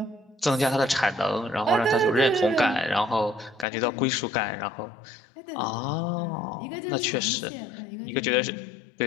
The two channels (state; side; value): drops out; right; at 3.7 s